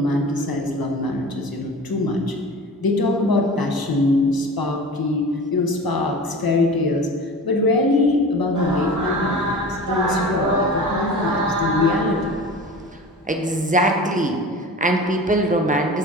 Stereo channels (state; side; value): normal; both; correlation 0.36